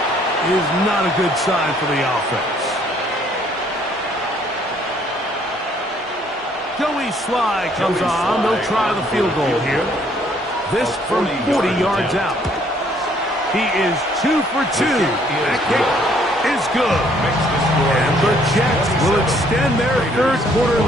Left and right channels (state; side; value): normal; both; correlation 0.64